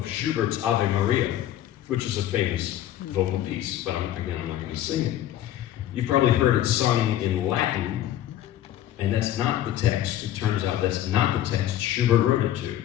Schubert's Ave Maria, which is a famous vocal piece, but again, I'm not going to sing it. You've probably heard it sung in Latin, and that's not the text. It turns out that's not the text Schubert wrote it to.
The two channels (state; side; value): quieter; right; 12.4 dB